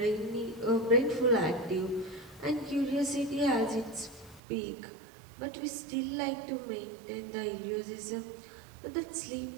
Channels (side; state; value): left; drops out; at 4.4 s